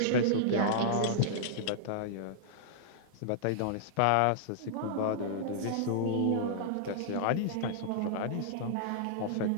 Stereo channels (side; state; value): both; different; correlation -0.02